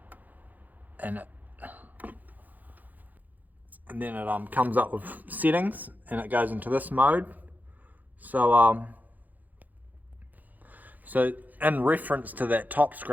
and then it comes up with settings, and it goes into this mode. So in reference to that top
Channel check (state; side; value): late; left; 0.082 ms